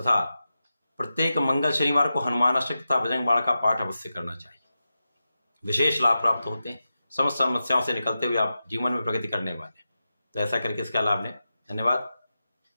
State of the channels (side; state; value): both; inverted; correlation -0.91